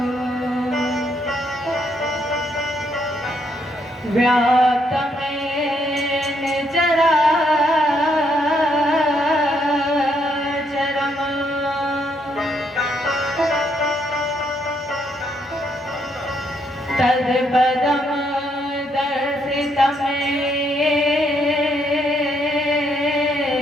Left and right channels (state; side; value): normal; both; correlation 0.74